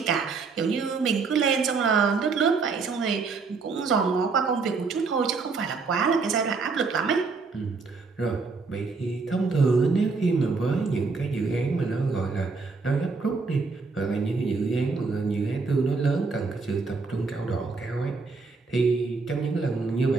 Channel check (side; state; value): left; quieter; 4.5 dB